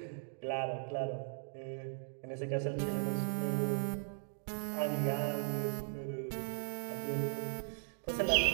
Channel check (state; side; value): silent; left; digital silence